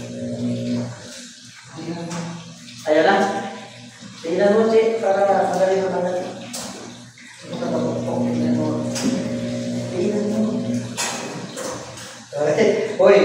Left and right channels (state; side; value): identical; both; correlation 1.00